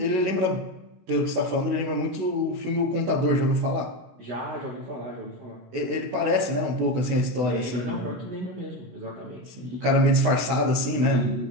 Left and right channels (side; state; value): left; late; 16 ms